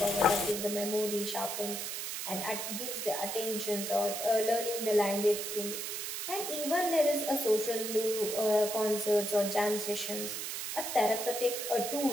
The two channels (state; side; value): noise; right; hiss, 4 dB below the sound